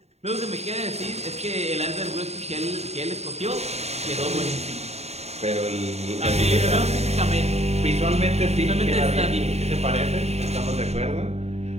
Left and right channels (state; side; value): late; left; 0.31 ms